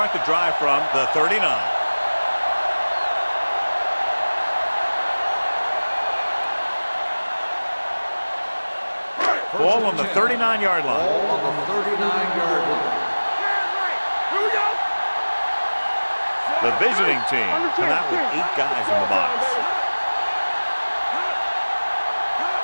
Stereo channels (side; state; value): both; inverted; correlation -1.00